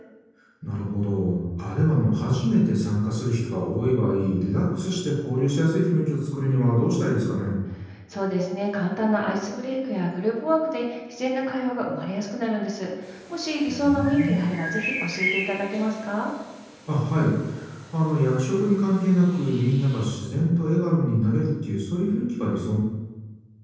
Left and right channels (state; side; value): identical; both; correlation 1.00